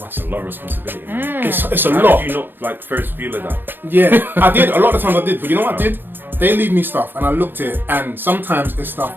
That's a lot of responsibility. It's a How lot. did you not like first feel of that? Yeah, I did. A lot of times I did. But you know what I did? They leave me stuff and I looked at it, and sometimes it's stuff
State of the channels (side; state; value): left; late; 0.097 ms